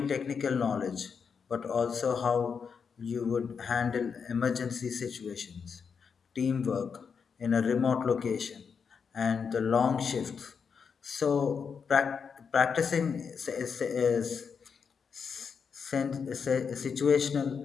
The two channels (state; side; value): quieter; right; 6.2 dB